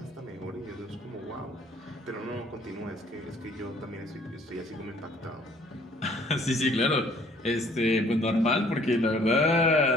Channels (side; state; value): both; normal; correlation 0.59